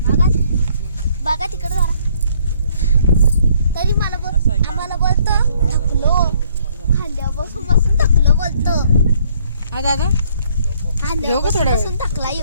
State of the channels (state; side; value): inverted; both; correlation -0.64